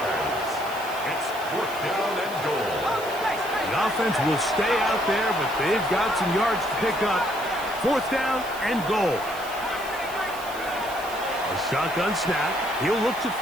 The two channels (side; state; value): right; noise; hiss, 15 dB below the sound